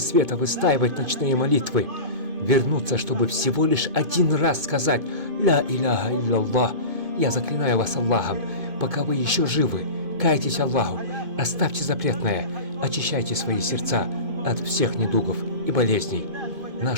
выстаивать ночные молитвы. Вернуться, чтобы всего лишь один раз сказать «Ля иляха илlallah». Я заклинаю вас Аллахом, пока вы еще живы, кайтесь Аллаху, оставьте запретное, очищайте свои сердца от всех недугов и болезней.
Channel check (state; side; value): late; left; 2.5 ms